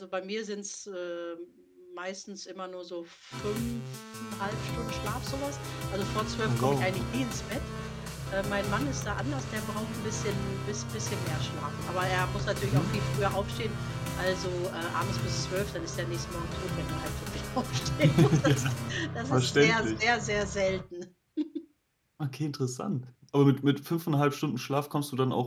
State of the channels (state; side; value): identical; both; correlation 1.00